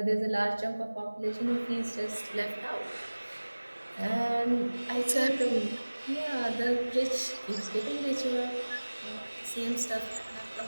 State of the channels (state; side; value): inverted; both; correlation -1.00